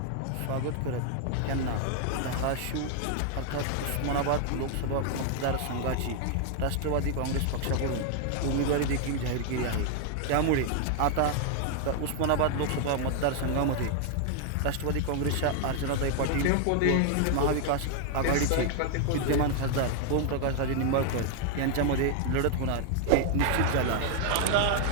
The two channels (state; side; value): different; both; correlation 0.00